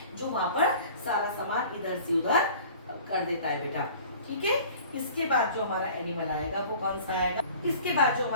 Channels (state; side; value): inverted; both; correlation -0.46